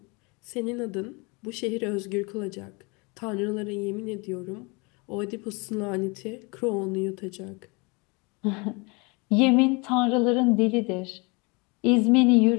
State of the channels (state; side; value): quieter; right; 29.0 dB